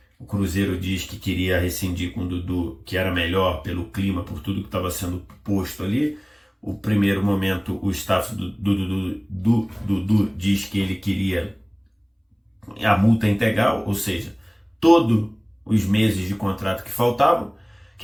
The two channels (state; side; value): identical; both; correlation 1.00